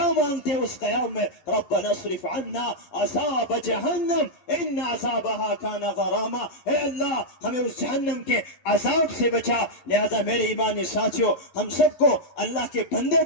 مانگتے ہیں اس قیام میں؟ ربنا اصرف عنا عذاب جہنم ان عذابها كان غراما, اے اللہ ہمیں اس جہنم کے عذاب سے بچا. لہذا میرے ایمانی ساتھیوں, ہم سب کو اللہ کے بندے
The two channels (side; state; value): right; late; 11 ms